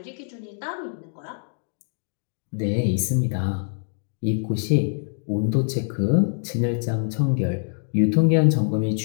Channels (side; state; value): right; silent; digital silence